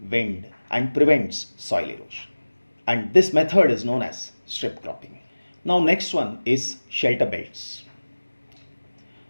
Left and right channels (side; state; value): both; inverted; correlation -1.00